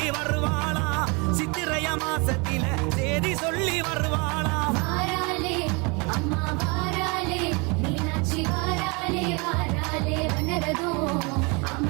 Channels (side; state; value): left; quieter; 29.8 dB